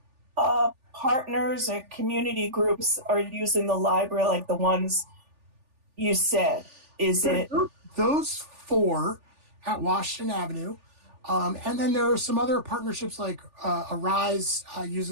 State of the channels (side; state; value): left; late; 3.4 ms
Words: partners or community groups are using the library, like the ones you said? Is it those 4 at Washington Avenue? And then there are some other partnerships like Arise